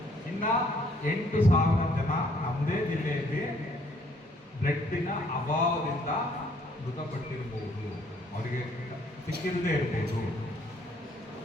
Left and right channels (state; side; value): normal; both; correlation 0.64